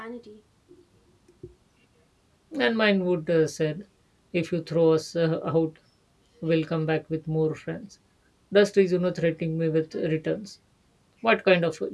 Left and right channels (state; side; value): identical; both; correlation 1.00